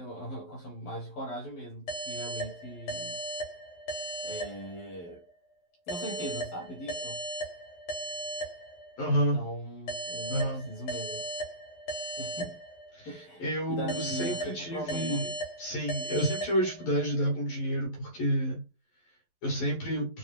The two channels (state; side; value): late; right; 11 ms